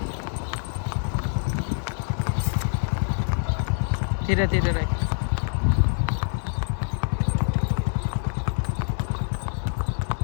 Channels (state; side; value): silent; right; digital silence